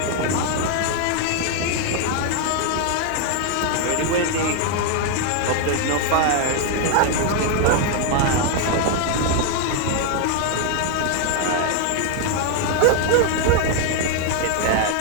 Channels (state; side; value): different; both; correlation 0.01